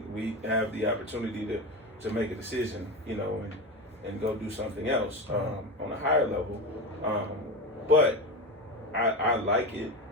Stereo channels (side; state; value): both; normal; correlation 0.21